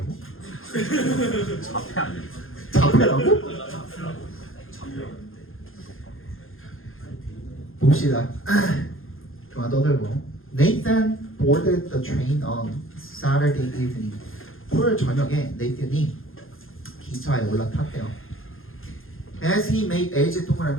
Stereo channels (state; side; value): late; right; 0.60 ms